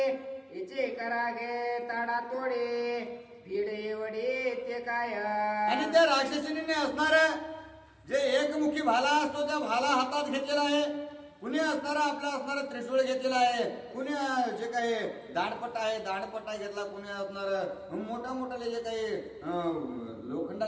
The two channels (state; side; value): identical; both; correlation 1.00